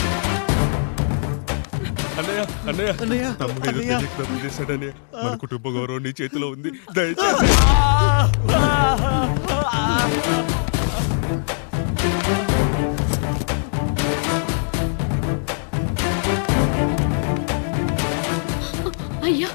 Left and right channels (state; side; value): silent; right; 65 dB below the other